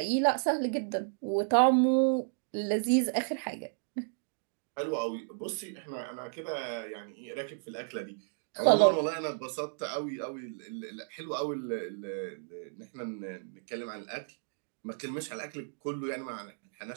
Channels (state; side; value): silent; left; digital silence